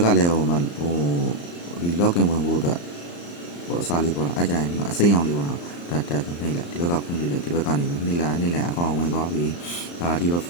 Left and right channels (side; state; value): right; late; 35 ms